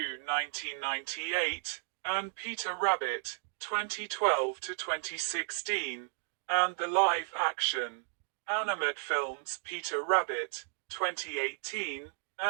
and Peter Rabbit, 2012-2016, and the live-action animated films Peter Rabbit, 2018,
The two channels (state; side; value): silent; left; 55 dB below the other